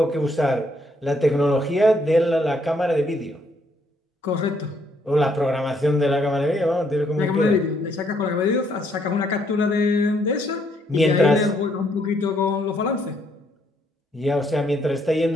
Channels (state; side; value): normal; both; correlation 0.71